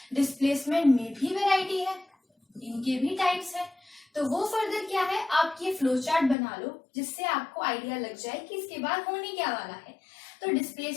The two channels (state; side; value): drops out; right; at 6.4 s